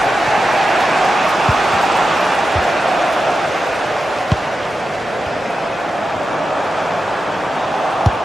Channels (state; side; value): normal; both; correlation 0.91